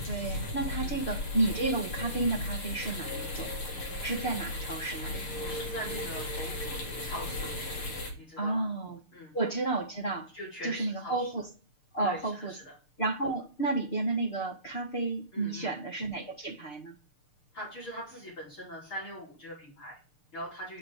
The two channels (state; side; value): late; right; 6.7 ms